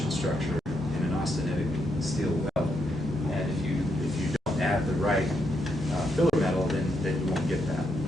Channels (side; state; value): both; normal; correlation 0.80